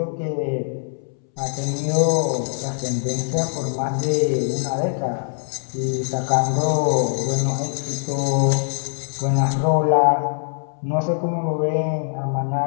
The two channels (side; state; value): right; silent; 64 dB below the other